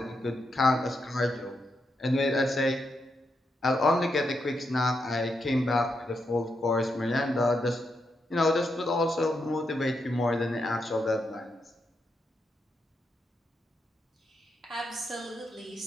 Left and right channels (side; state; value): both; normal; correlation 0.83